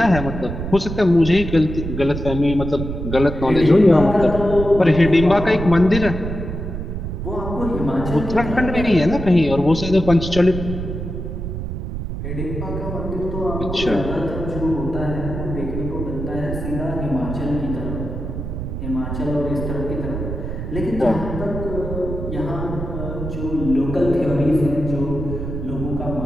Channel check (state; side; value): noise; right; rumble, 6 dB below the sound